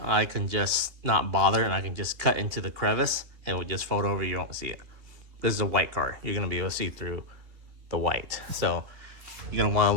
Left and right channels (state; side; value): late; left; 2.8 ms